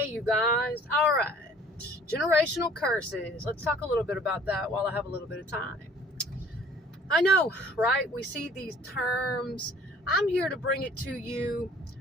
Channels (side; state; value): both; normal; correlation 0.54